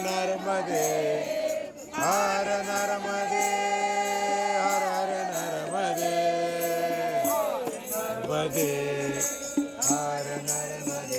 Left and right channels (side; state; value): both; identical; correlation 1.00